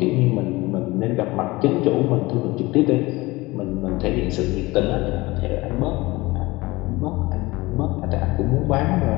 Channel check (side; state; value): right; quieter; 21.4 dB